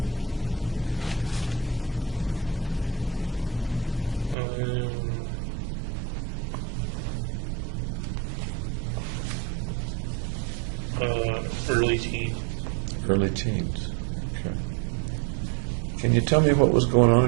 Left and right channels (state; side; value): drops out; left; at 4.4 s